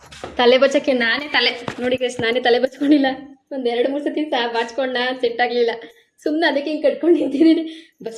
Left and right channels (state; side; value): identical; both; correlation 1.00